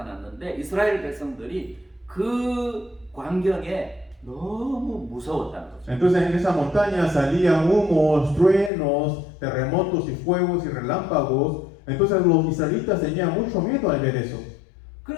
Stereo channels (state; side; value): drops out; right; at 8.7 s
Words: 이스라엘 백성들이 그 광경에 너무 무서웠다는 거죠. Entonces en esa montaña salían humos, truenos, terremotos y fuegos y relámpagos. Entonces los israelitas tenían mucho miedo al ver eso.